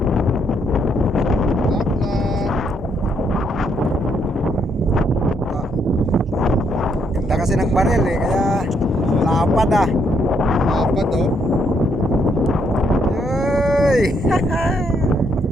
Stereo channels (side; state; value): both; normal; correlation 0.73